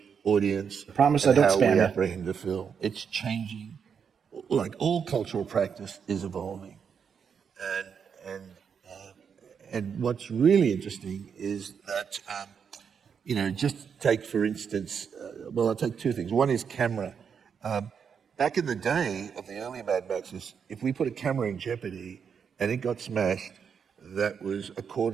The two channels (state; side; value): quieter; left; 6.9 dB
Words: audience, Promise and I don't how spam we you. apprehend the film. It's changing. Like all cultural practice is evolving, and what's really interesting is that just take for instance. I'll take two things. One is camera. Back in the day of the early Mad Maxes, if we put a camera in jeopardy and it got smashed, that was